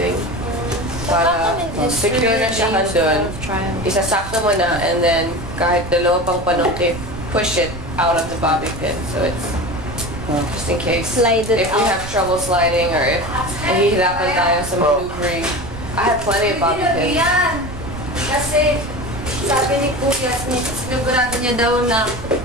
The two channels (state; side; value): noise; right; rumble, 11 dB below the sound